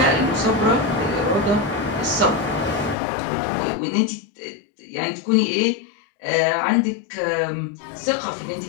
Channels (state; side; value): drops out; right; at 3.0 s